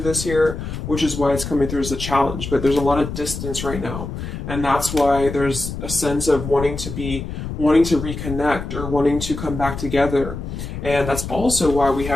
this here, which is why it's coming through as a challenge. But there's a lot of distance right now. And that's why there's a sense of wanting to reconnect or wanting to come back together. And that's also why we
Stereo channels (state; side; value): noise; left; rumble, 7 dB below the sound